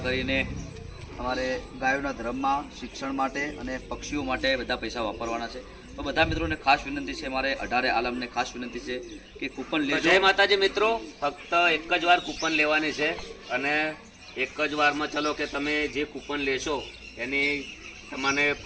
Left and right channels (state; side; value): identical; both; correlation 1.00